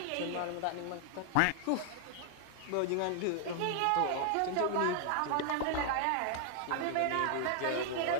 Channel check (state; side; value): different; both; correlation 0.00